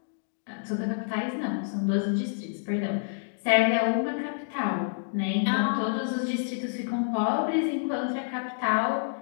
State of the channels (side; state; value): right; silent; digital silence